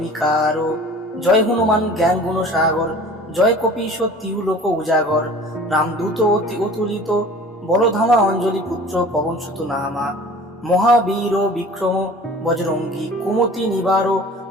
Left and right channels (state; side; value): normal; both; correlation 0.44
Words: জয় হনুমান জ্ঞান গুণ সাগর জয় কপীশ তিহু লোক উজাগর রামদূত অতি অতুলিত বলধামা অঞ্জলি পুত্র পবন সুত নামা মহাবীর বিক্রম বজরঙ্গী কুমতি নিবার